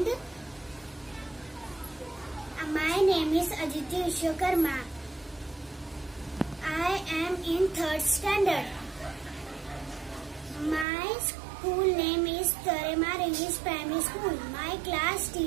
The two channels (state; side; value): drops out; left; at 10.9 s